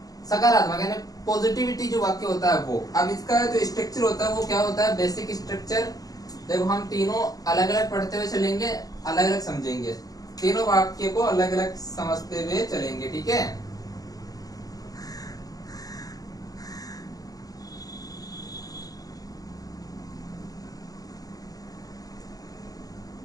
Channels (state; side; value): late; right; 0.18 ms